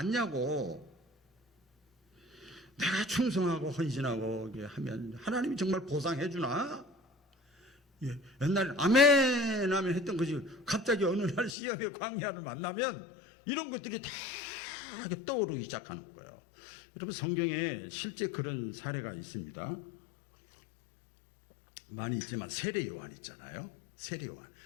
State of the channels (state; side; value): drops out; right; at 11.5 s